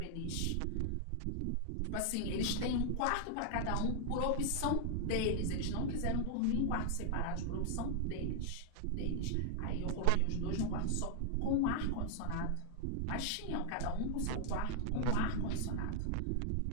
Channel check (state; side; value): different; both; correlation 0.00